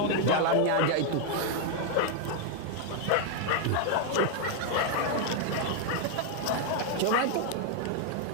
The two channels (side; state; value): both; different; correlation 0.00